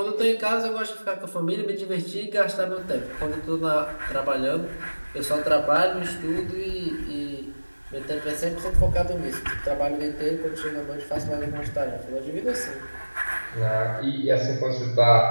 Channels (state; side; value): inverted; both; correlation -1.00